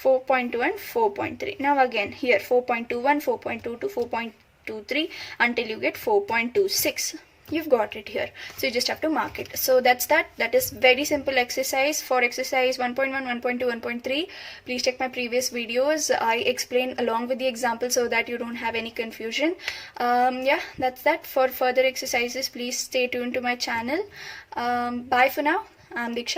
4.2 and 4.3. Now again here 4.21, 4.22, 4.23 until you get 4.26. You've got it here, so you just have to mark it. So that is very simple exercise. For exercise 1.1, 1.2, 1.3, please check my previous videos. I explain along with the example so that you don't have any confusion. Yeah, that's that. For further exercises, please stay tuned to my channel. Bye for now. I'm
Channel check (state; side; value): identical; both; correlation 1.00